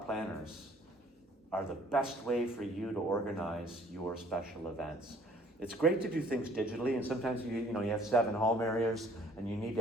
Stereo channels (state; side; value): normal; both; correlation 0.57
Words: planners are the best way for you to organize your special events. It's great to do things digitally, and sometimes you have 7 home areas and you need